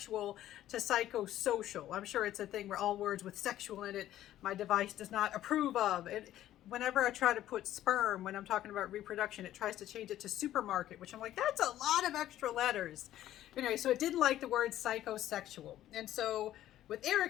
to psychosocial. I'm sure it's a thing where all words with sexual in it, my device does not approve of. Whenever I try to put sperm, when I'm talking about reproduction, it tries to change it to supermarket, which I'm like, that's a lot of extra letters. Anyway, so it didn't like the word psychosexual. And so with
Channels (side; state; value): right; quieter; 13.0 dB